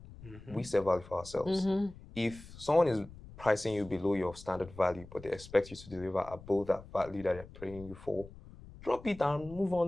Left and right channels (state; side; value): noise; left; rumble, 17 dB below the sound